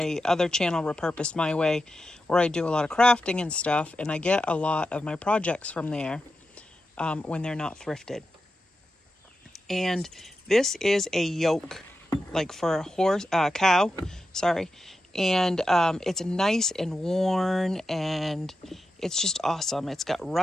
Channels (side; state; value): both; normal; correlation 0.90